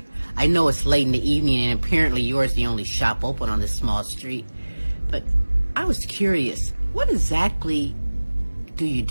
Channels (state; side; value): inverted; both; correlation -1.00